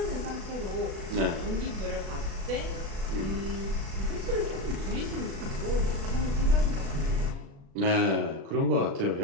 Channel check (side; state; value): left; late; 36 ms